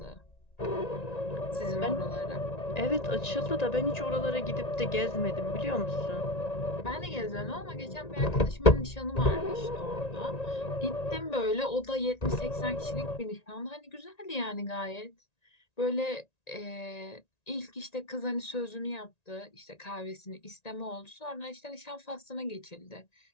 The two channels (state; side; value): late; right; 1.9 ms